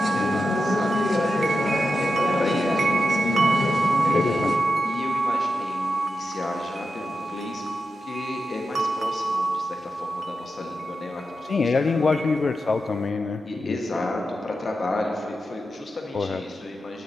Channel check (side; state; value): both; normal; correlation 0.89